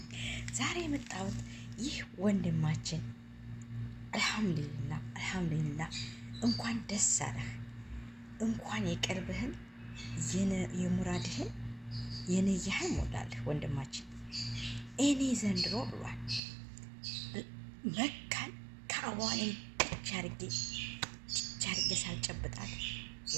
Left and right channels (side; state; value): left; drops out; at 16.4 s